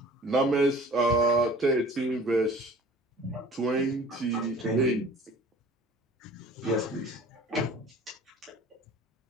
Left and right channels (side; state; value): both; normal; correlation 0.46